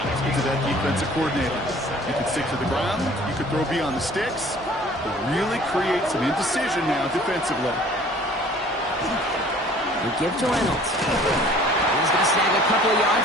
into that defensive coordinator. You can stick to the ground, you can throw beyond the sticks, but really create some indecision now defensively. They give to Reynolds. He's going to snag a couple of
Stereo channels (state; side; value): normal; both; correlation 0.51